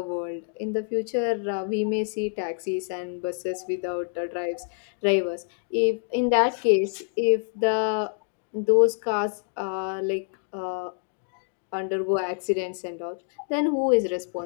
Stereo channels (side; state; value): right; silent; 60 dB below the other